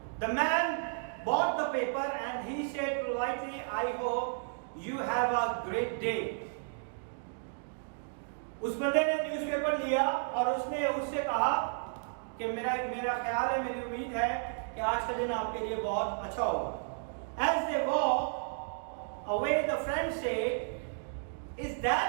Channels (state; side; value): silent; left; digital silence